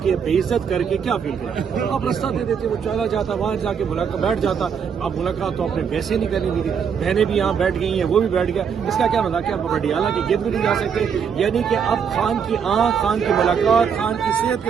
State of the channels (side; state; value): left; quieter; 7.0 dB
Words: کے بے عزت کر کے کیا فیل کرتے؟ آپ رستہ دے دیتے، وہ چلا جاتا، وہاں جا کے بیٹھ جاتا. اب ملاقات تو آپ نے ویسے نہیں کرنی دی تھی. بہنیں بھی یہاں بیٹھ گئی ہیں، وہ بھی بیٹھ گیا. اس کا کیا مطلب کہ آپ اڈیالہ کی گرد بھی نہیں جا سکتے؟ یعنی کہ اب خان کی آنکھ، خان کی ملاقات، خان کی صحت کے